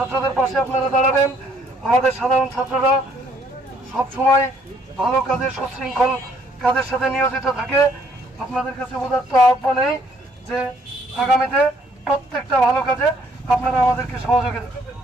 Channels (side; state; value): both; normal; correlation 0.65